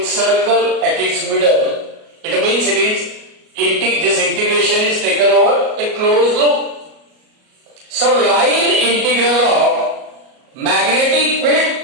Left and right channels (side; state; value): left; late; 37 ms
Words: circle at its middle, it means it is this integration is taken over a closed loop. So line integral of magnetic